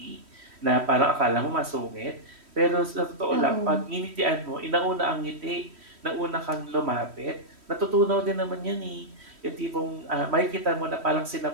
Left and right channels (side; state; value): left; late; 3.1 ms